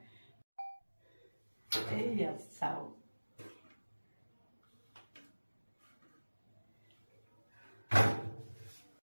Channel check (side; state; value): both; inverted; correlation -1.00